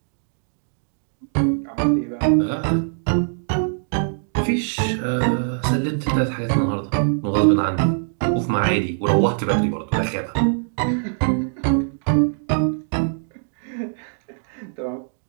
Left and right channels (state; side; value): silent; left; digital silence